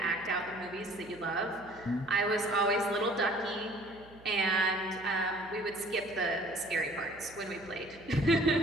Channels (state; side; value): noise; right; hum, 23 dB below the sound